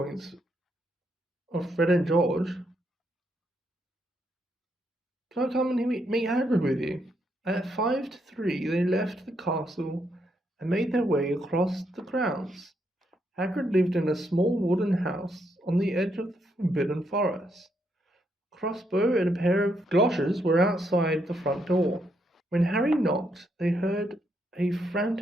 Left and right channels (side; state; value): both; normal; correlation 0.77